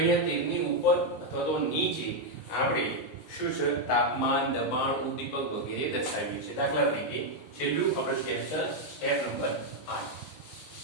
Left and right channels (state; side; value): late; right; 19 ms